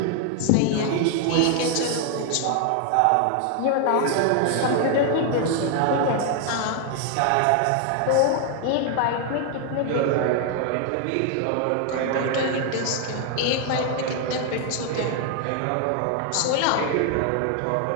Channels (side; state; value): both; different; correlation 0.00